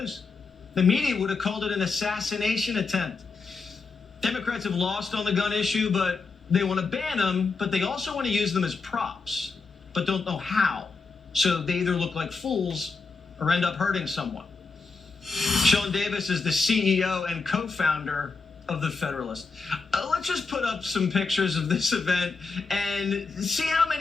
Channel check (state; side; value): quieter; right; 4.3 dB